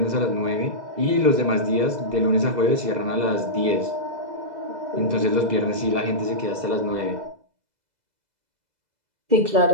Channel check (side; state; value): left; late; 2.0 ms